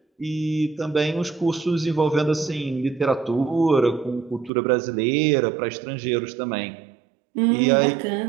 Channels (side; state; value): left; drops out; at 4.5 s